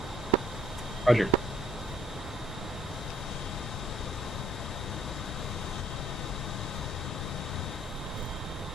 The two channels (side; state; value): both; normal; correlation 0.62